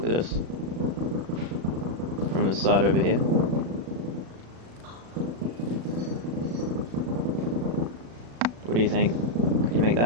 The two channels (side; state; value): left; late; 36 ms